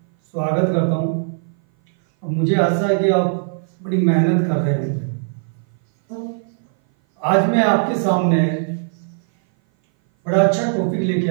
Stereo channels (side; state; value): left; silent; 58 dB below the other